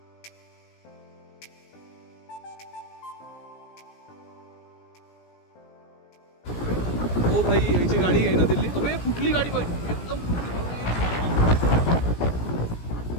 ओ भाई याची गाडी आहे ना दिल्ली. अरे कुठली गाडी भाई, एकदम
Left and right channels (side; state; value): right; late; 17 ms